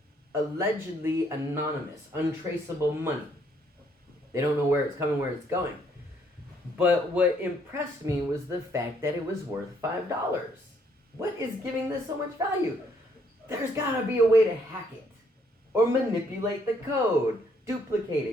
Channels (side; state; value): both; normal; correlation 0.68